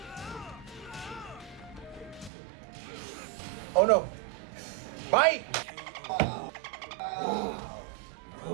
Oh no! Bite!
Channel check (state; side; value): drops out; left; at 2.3 s